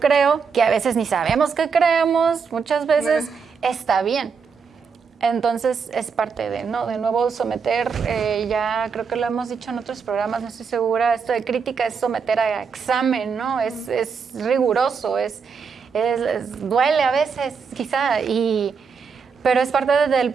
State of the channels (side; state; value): left; quieter; 5.8 dB